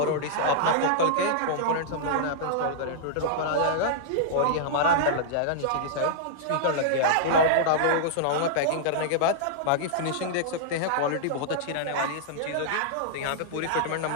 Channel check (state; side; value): different; both; correlation -0.02